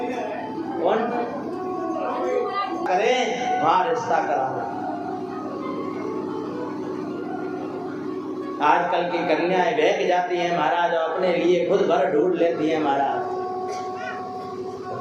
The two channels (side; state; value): both; identical; correlation 1.00